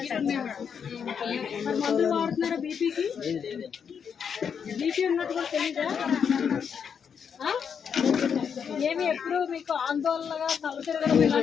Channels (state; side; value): quieter; right; 7.1 dB